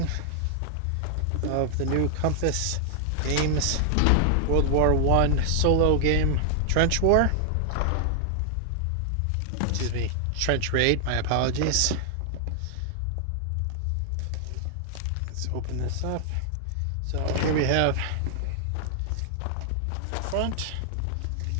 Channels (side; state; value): both; different; correlation 0.00